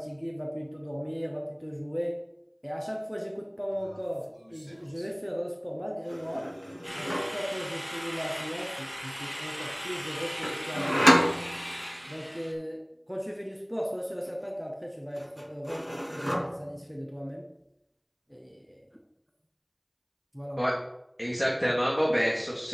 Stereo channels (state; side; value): identical; both; correlation 1.00